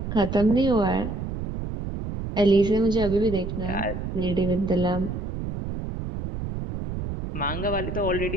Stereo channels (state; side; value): noise; right; rumble, 5 dB below the sound